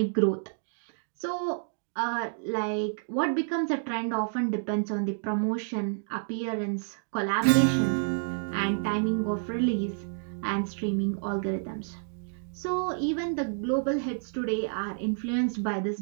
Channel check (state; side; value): silent; left; digital silence